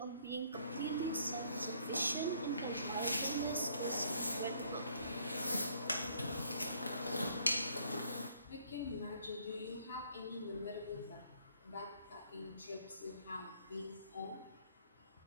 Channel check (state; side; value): inverted; both; correlation -0.65